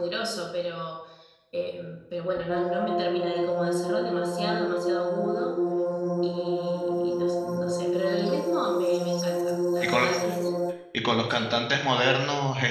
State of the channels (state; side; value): identical; both; correlation 1.00